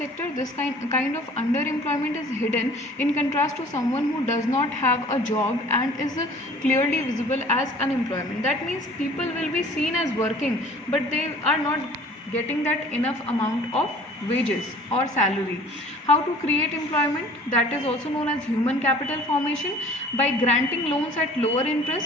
This kind of underemployment is hidden in contrast to someone who does not have a job and is clearly visible as unemployment. That means people will be seen as working, but they are not getting that enough amount of wages or salary. How to create employment? That is also known as human capital formation. By granting loans at lower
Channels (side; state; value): both; normal; correlation 0.49